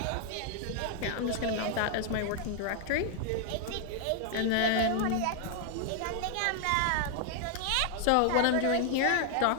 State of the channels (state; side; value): different; both; correlation 0.00